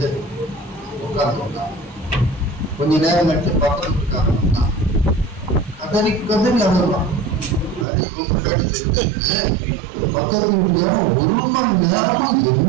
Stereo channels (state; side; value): drops out; left; at 7.9 s